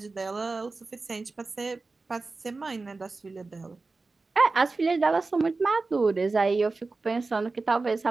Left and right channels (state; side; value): quieter; left; 3.7 dB